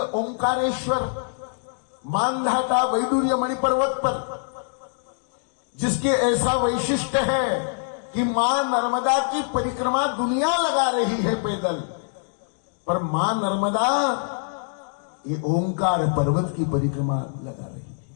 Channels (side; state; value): right; silent; digital silence